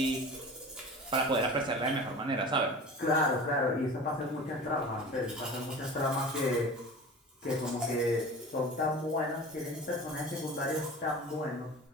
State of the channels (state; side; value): normal; both; correlation 0.37